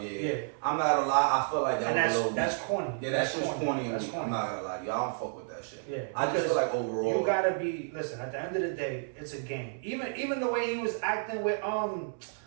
Yeah. I'm not gonna lie. I feel like that was a little. That's corny. Yeah, that's just corny. That's corny. I'm not gonna lie to you. I don't fuck with that shit. Yeah, I just feel like overall, you gotta be. Listen, at the end of the day, it's a game. Even the way he was acting with oh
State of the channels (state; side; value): silent; left; 57 dB below the other